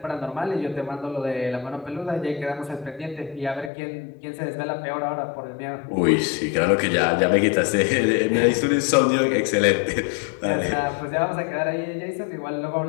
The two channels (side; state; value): right; drops out; at 3.7 s